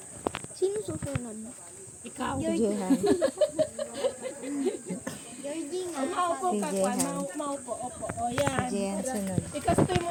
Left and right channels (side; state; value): both; identical; correlation 1.00